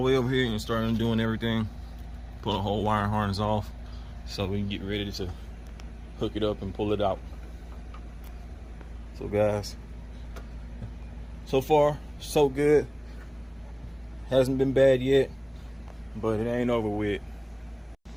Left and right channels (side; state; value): both; identical; correlation 1.00